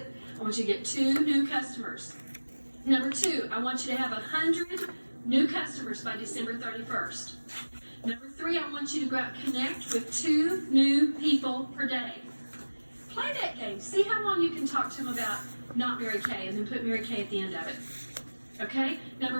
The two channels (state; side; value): inverted; both; correlation -1.00